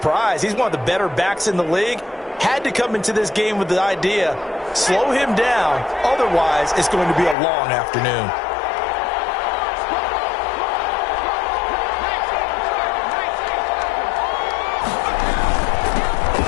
He's one of the better backs in the league. Had to come into this game with the idea, slow him down, otherwise it's going to be a long afternoon.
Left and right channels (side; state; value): right; drops out; at 7.4 s